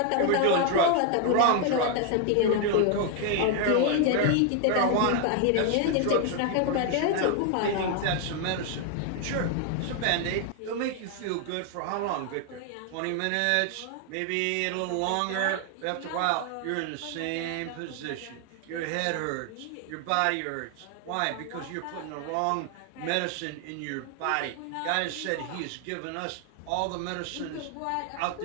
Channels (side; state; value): both; different; correlation 0.00